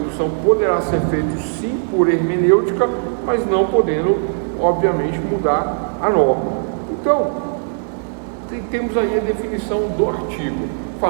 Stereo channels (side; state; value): left; silent; digital silence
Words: poderá ser feito sim por hermenêutica, mas não podendo, obviamente, mudar a norma. Então, temos aí a definição do artigo.